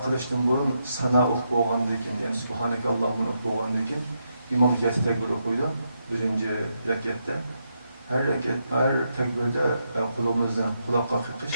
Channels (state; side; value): inverted; both; correlation -0.82